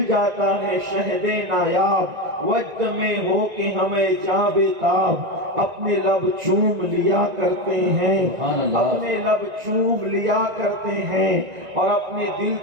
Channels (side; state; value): left; late; 1.9 ms